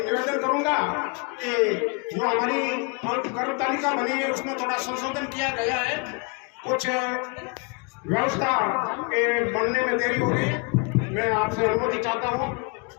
करूंगा कि जो हमारी कर्म तालिका बनी है उसमें थोड़ा संशोधन किया गया है। कुछ व्यवस्था के बनने में देरी हो गई। मैं आपसे अनुमति चाहता हूँ।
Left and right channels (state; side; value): quieter; right; 33.7 dB